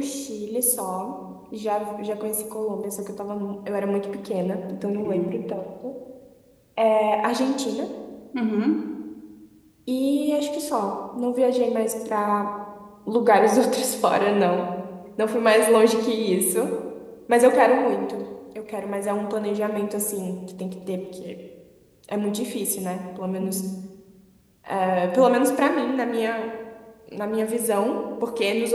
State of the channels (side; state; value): both; identical; correlation 1.00